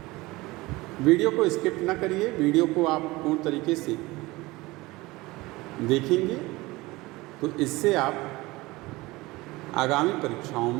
वीडियो को स्किप ना करिए, वीडियो को आप पूर्ण तरीके से देखेंगे तो इससे आप आगामी परीक्षाओं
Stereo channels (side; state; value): left; quieter; 21.0 dB